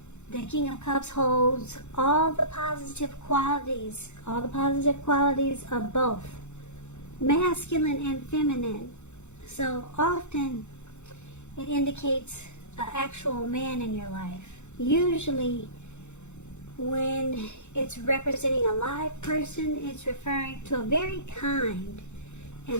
The King of Cups holds all the positive qualities of both masculine and feminine. So often it indicates an actual man in your life. Usually when it's representing a live person, it's referring to a very kind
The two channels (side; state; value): right; late; 0.83 ms